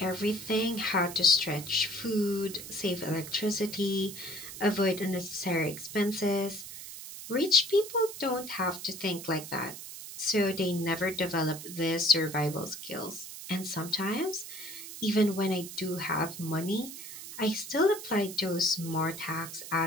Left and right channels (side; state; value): right; noise; hiss, 11 dB below the sound